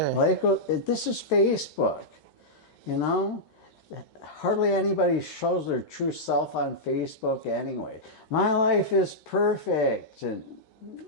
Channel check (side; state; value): right; late; 13 ms